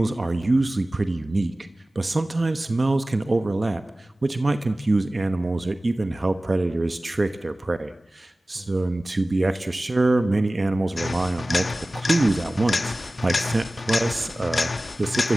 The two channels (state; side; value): normal; both; correlation 0.97